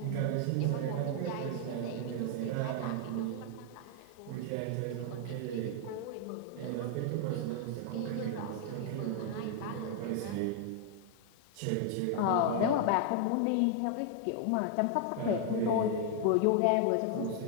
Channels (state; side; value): different; both; correlation 0.00